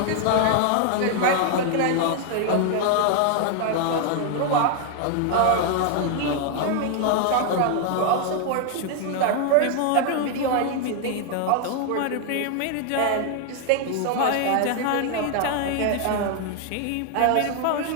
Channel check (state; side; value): different; both; correlation 0.00